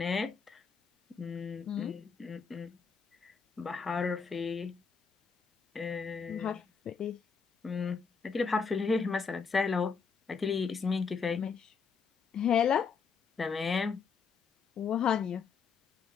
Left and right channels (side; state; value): right; quieter; 5.8 dB